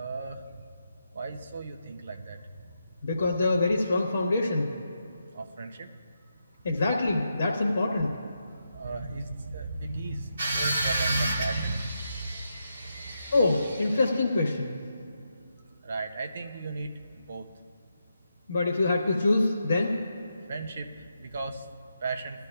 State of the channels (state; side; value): inverted; both; correlation -0.84